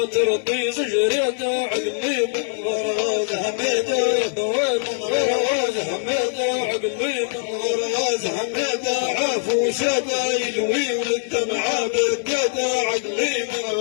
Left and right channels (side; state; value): right; silent; digital silence